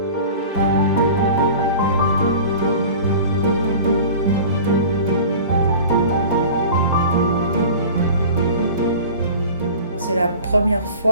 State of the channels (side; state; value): both; inverted; correlation -0.39